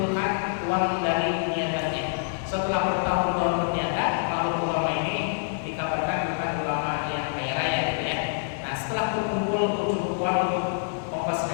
uang dari niatannya. Setelah bertahun-tahun berniaga, lalu ulama ini dikabarkan bukan ulama yang kaya raya gitu ya. Nah setelah berkumpul cukup uang untuk ongkos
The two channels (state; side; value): silent; right; digital silence